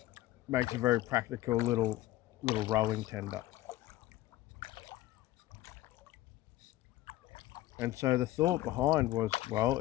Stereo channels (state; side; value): quieter; right; 16.0 dB